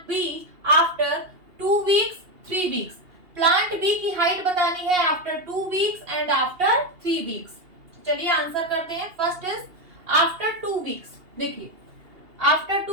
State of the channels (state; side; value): late; left; 2.8 ms